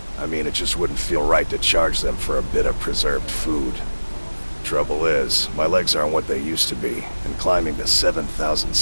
I mean, it just wouldn't feel right to charge them for a bit of preserved food. Trouble is, my legs aren't what they used to be, and climbing the 7,000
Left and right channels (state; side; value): inverted; both; correlation -1.00